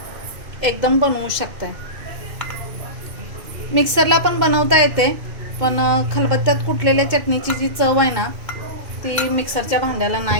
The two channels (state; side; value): late; left; 2.2 ms